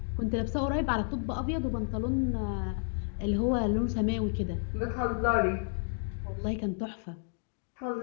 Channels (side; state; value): right; silent; 57 dB below the other